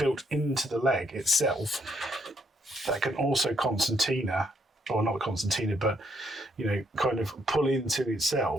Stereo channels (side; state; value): both; normal; correlation 0.73